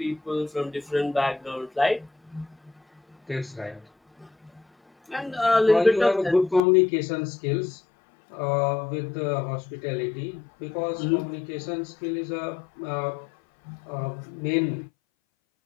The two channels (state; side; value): drops out; right; at 6.6 s